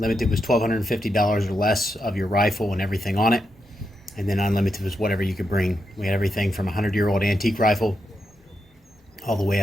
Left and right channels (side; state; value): both; normal; correlation 0.85